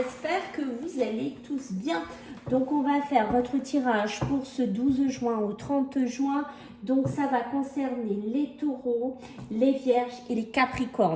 que vous allez tous bien. Donc on va faire votre tirage pour ce 12 juin au 30 juin. Donc ça va concerner les taureaux, les vierges et les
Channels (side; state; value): both; identical; correlation 1.00